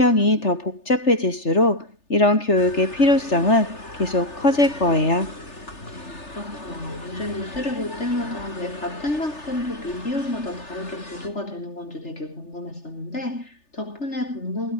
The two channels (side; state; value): right; late; 3.3 ms